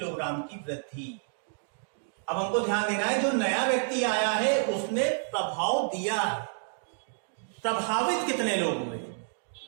की वृद्धि। अब हमको ध्यान देना है, जो नया व्यक्ति आया है उसने प्रभाव दिया है। प्रभावित कितने लोग हुए,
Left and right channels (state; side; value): silent; left; digital silence